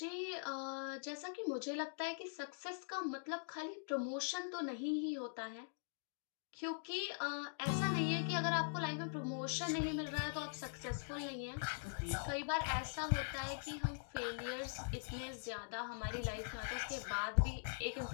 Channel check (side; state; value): right; silent; digital silence